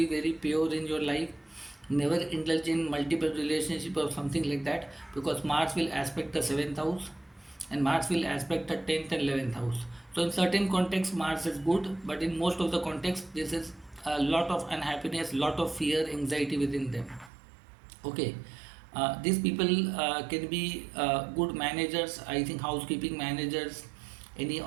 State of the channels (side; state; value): left; drops out; at 17.3 s